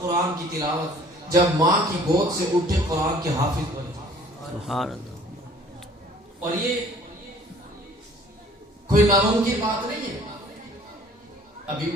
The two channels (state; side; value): normal; both; correlation 0.54